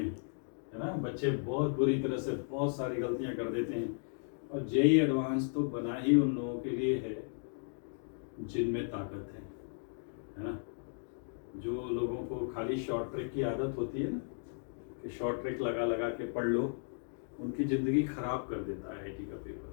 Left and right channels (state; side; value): silent; right; digital silence